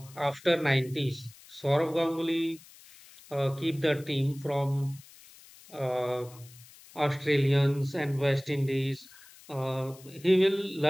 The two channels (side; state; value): left; noise; hiss, 22 dB below the sound